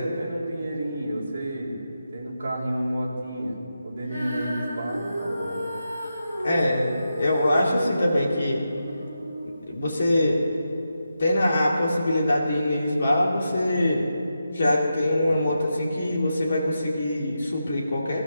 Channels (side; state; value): both; inverted; correlation -0.87